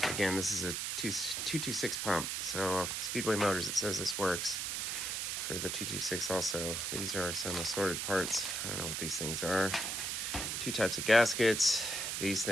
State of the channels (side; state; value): right; noise; hiss, 2 dB below the sound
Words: Again, this is a 226 pump. So Speedway Motors, it says this works for the 226 also. These are some assorted parts. I don't know what these things are. Two types of gaskets, these